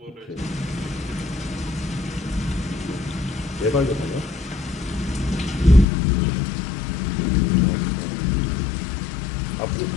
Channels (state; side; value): drops out; right; at 5.9 s